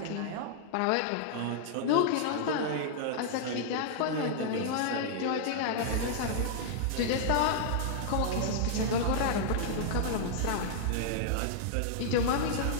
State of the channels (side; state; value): both; different; correlation -0.01